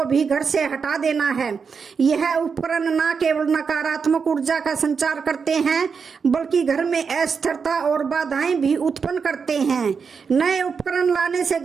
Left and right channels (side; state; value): left; quieter; 5.8 dB